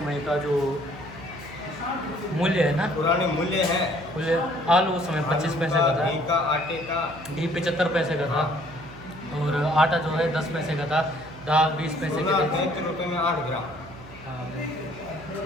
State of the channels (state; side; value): noise; right; hum, 18 dB below the sound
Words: का जो मूल्य है ना, पुराने मूल्य है। मूल्य आलू उस समय 25 पैसे का था, घी का, आटे का, घी 75 पैसे का था, और आटा जो है 10 पैसे का था, दाल 20 पैसे की थी। 33 रुपये में 8 ग्राम। हाँ।